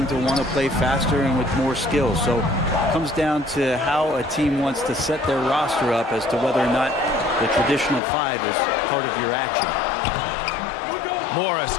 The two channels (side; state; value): right; drops out; at 8.0 s